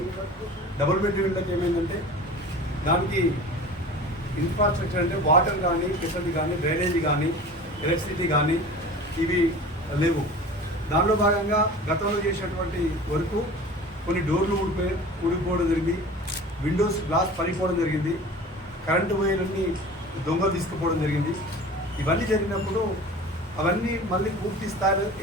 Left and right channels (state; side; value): normal; both; correlation 0.39